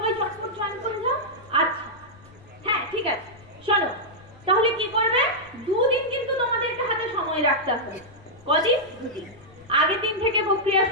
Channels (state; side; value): noise; left; rumble, 25 dB below the sound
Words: চটপট জয়েন করে যাও। আচ্ছা, হ্যাঁ ঠিক আছে। শোনো, তাহলে কি করবে? দুদিন কিন্তু তোমাদেরকে হাতে সময় রাখতে হবে। কদিন? দুদিন। আগের দিন থেকে প্রক্রিয়া